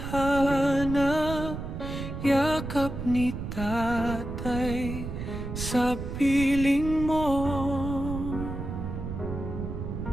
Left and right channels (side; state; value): right; noise; rumble, 6 dB below the sound